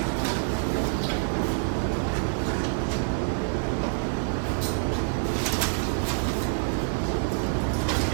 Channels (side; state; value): left; silent; digital silence